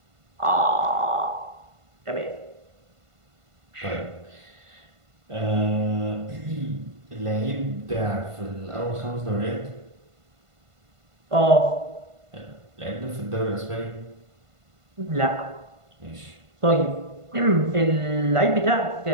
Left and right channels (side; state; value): left; late; 1.5 ms